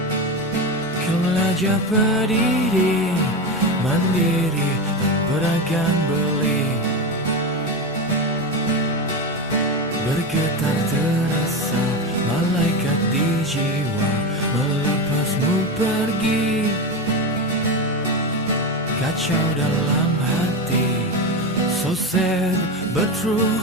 ke belajar berdiri mandiri dan beragam beli. Bergetar terasa malaikat di jiwa melepasmu pergi. Kacau dalam hati, so sad but true,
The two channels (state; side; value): noise; right; hum, 29 dB below the sound